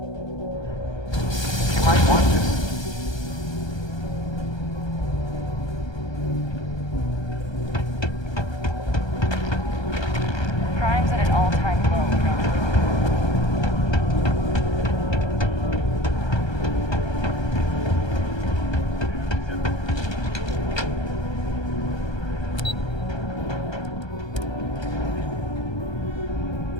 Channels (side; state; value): right; late; 1.3 ms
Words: You might want this. Crime's at an all-time low.